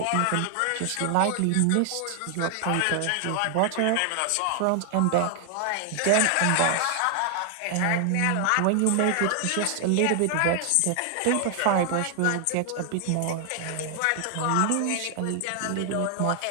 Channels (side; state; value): both; different; correlation 0.00